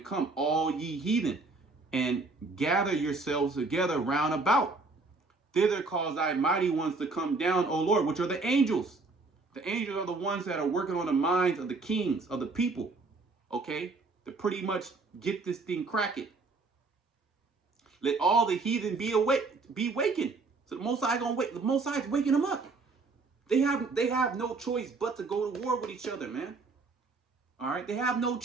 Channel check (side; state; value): left; quieter; 3.7 dB